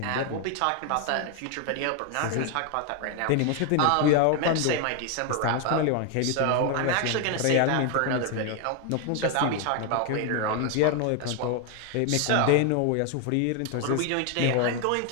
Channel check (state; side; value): different; both; correlation 0.01